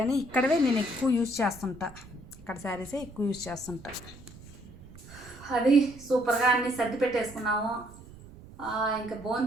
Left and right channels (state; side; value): noise; right; rumble, 19 dB below the sound